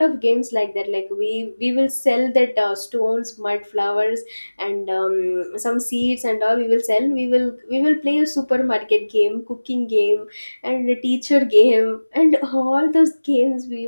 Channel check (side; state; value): both; inverted; correlation -1.00